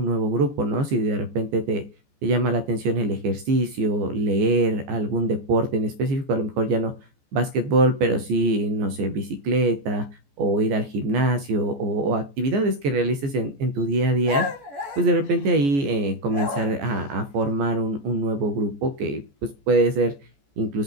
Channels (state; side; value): late; left; 14 ms